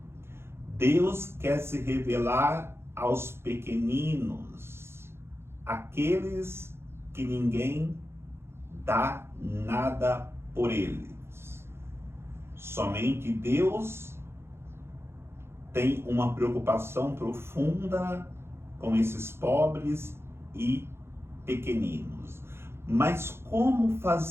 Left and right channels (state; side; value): late; left; 0.12 ms